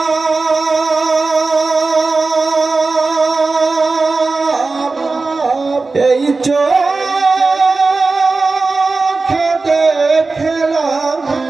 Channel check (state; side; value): quieter; left; 3.8 dB